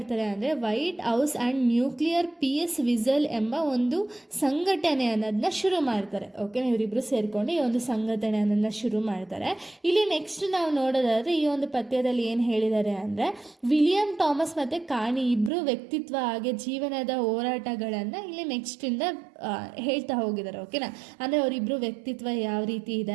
ಅಂದರೆ White House and nuclear peace whistle ಎಂಬ ಒಂದು ಸಂಘಟನೆ ಅನ್ನೋದನ್ನ ಶುರು ಮಾಡ್ತಾರೆ. ಓಕೆನಾ? ಇವರಿಬ್ಬರು ಸೇರಿಕೊಂಡು ಈ ಒಂದು ಸಂಘಟನೆ ಅನ್ನೋದನ್ನ ಶುರು ಮಾಡ್ತಾರೆ. ಇಲ್ಲಿ ನೆಕ್ಸ್ಟ್ ನಾವು ನೋಡೋದಾದರೆ ಈ ಒಂದು ಪದ್ಯದಲ್ಲಿ ಏನು ಹೇಳಿದ್ದಾರೆ ಅಂದರೆ ವಿಲಿಯಂ ಥಾಮಸ್ ಮತ್ತು ಕಾಣಿ ಇಬ್ಬರು ವ್ಯಕ್ತಿತ್ವ ಹಾಗೆ ಜೀವನದ ಹೋರಾಟಗಳನ್ನು ಇಲ್ಲಿ ನೆಕ್ಸ್ಟಿಂದ ಹೇಳ್ತಾ ಹೋಗಿದ್ದಾರೆ. ಓಕೆನಾ? ಅಂದರೆ ಅವರಿಬ್ಬರು ವ್ಯಕ್ತಿತ್ವ ಯಾವ ರೀತಿ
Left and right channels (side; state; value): left; drops out; at 15.5 s